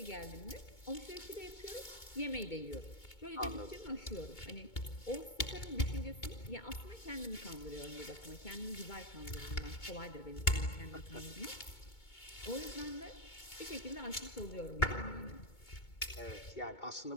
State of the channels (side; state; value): right; late; 2.2 ms